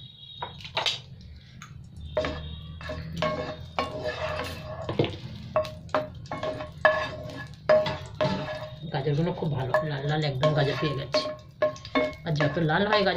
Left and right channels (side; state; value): both; identical; correlation 1.00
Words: গাজরগুলো খুব ভালো লাল লাল একদম গাজর পেয়ে গেছে। আর যত লাল হয়